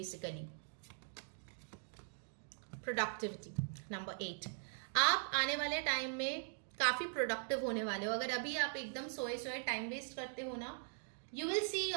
Productivity number 8. आप आने वाले टाइम में काफी प्रोडक्टिव होने वाले हो. अगर अभी आप एकदम सोए टाइम वेस्ट करते हो ना, you will see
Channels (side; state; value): left; silent; digital silence